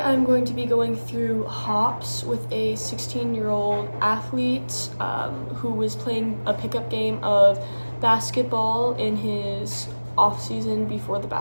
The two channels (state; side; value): inverted; both; correlation -1.00